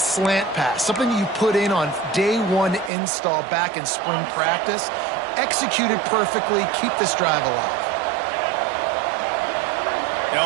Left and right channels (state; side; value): drops out; left; at 2.9 s